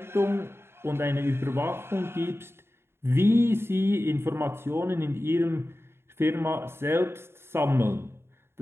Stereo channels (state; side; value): late; left; 0.12 ms